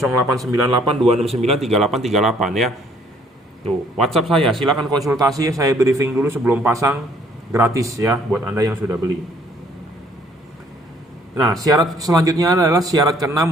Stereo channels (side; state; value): both; normal; correlation 0.62